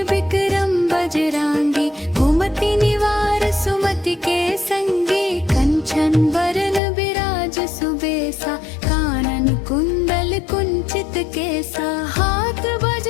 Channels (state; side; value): drops out; right; at 6.8 s